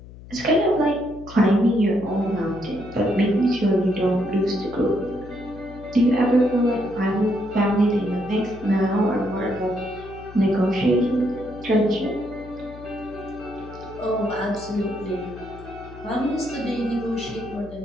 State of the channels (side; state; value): left; noise; hum, 17 dB below the sound